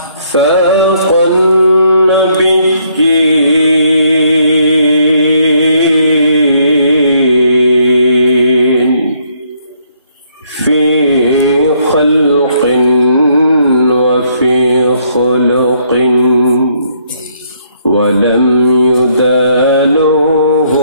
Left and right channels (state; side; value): inverted; both; correlation -0.70